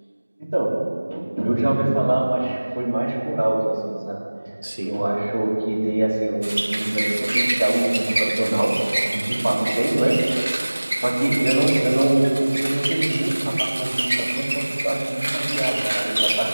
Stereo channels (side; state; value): both; inverted; correlation -1.00